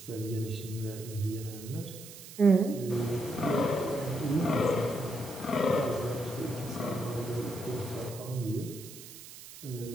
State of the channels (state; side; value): noise; right; hiss, 15 dB below the sound